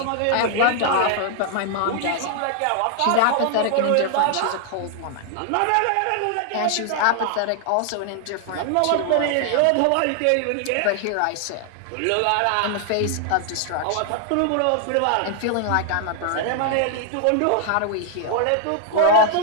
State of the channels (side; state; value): both; different; correlation 0.00